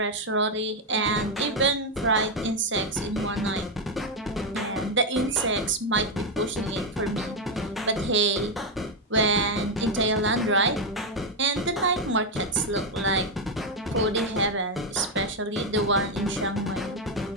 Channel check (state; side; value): normal; both; correlation 0.04